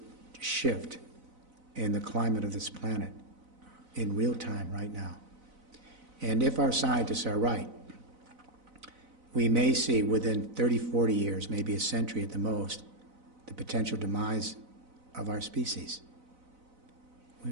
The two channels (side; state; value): left; late; 4.0 ms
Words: shift in the climate of this planet in real time right now. And if our scientists are right, we may see within 30, 40 years, maybe a century at the most, the potential demise of our species.